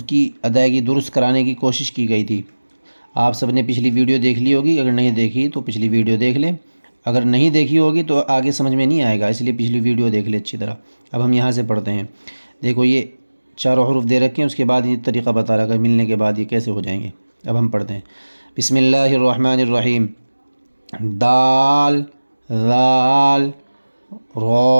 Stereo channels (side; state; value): both; inverted; correlation -1.00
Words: کی ادائیگی درست کرانے کی کوشش کی گئی تھی۔ آپ سب نے پچھلی ویڈیو دیکھ لی ہوگی، اگر نہیں دیکھی تو پچھلی ویڈیو دیکھ لیں، اگر نہیں دیکھی ہوگی تو آگے سمجھ میں نہیں آئے گا، اس لیے پچھلی ویڈیو دیکھ لیں اچھی طرح۔ اب ہم یہاں سے پڑھتے ہیں۔ دیکھو یہ چاروں حروف دے رکھے ہیں، اس کے بعد یہ طریقہ بتا رہا ہے ملنے کے بعد یہ کیسے ہو جائیں گے۔ اب ہم پڑھتے ہیں۔ بسم اللہ الرحمن الرحیم۔ دال، ذال،